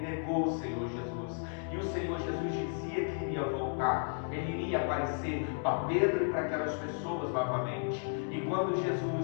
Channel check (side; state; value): right; silent; 55 dB below the other